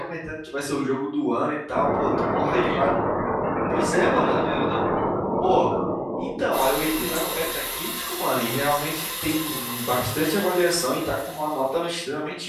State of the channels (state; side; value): identical; both; correlation 1.00